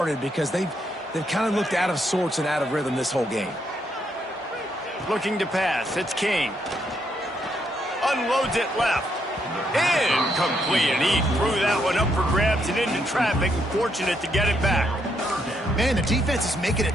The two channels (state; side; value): normal; both; correlation 0.76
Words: because they've kind of looked out of sorts and out of rhythm this whole game. Looking to pass, it's King. Unloads it left. Incomplete, and he threw that one up for grabs and into traffic, and fortunate to get it back. Man, the defense is making it